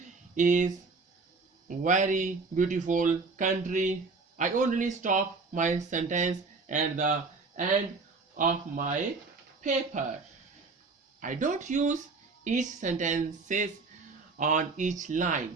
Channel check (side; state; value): left; quieter; 4.1 dB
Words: is very beautiful country. I only stop my sentence at the end of my paper. I don't use each sentences on each